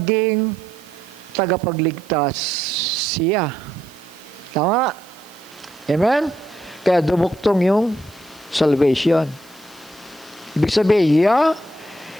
tagapagligtas siya. Tama? Amen? Kaya dumuktong yung salvation. Ibig sabihin, Yah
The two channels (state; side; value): noise; right; hiss, 26 dB below the sound